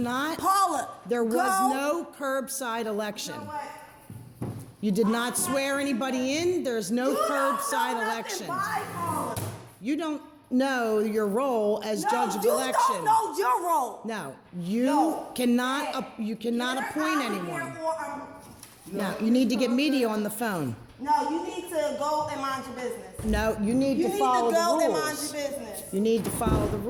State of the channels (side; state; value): both; identical; correlation 1.00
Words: Paula, There was go. no curbside election. You know what? You did not swear anybody in. There's no You don't curbside know nothing. election. Bye, Paula. You don't know your role as No, judge of you election. don't know your role. No, you No. cannot. Hey, You cannot get her appoint out of anyone. here or No, you need to get media on the phone. no, you need to go and mind your business. No, you need You to need follow to go the and mind rules. your business. You need to follow the